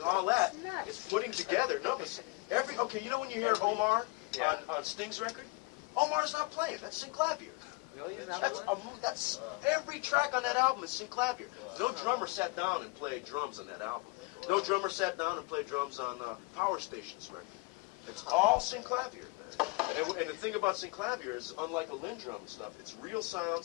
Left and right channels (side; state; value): right; quieter; 26.6 dB